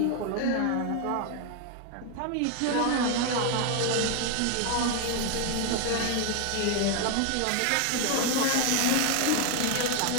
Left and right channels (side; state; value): both; different; correlation 0.01